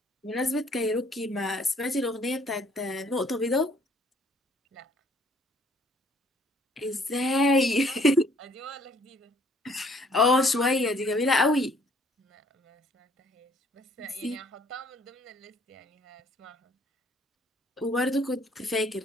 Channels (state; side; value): normal; both; correlation 0.61